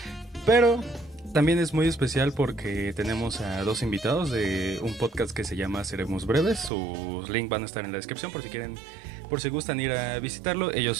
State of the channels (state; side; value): drops out; left; at 6.7 s